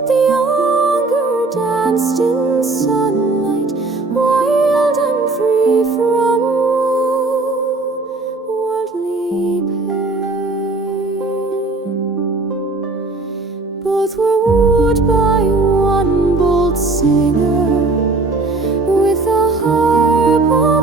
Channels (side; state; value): left; quieter; 3.3 dB